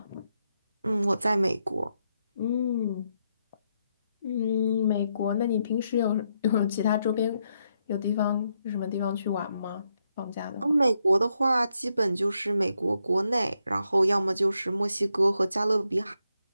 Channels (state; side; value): inverted; both; correlation -0.81